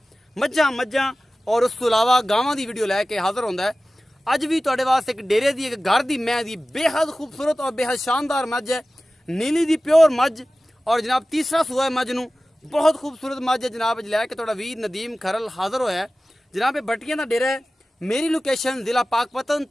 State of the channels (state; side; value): normal; both; correlation 0.96